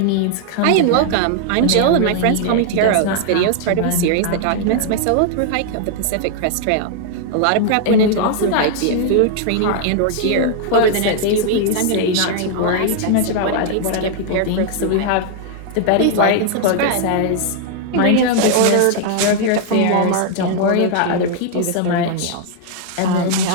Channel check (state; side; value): different; both; correlation 0.00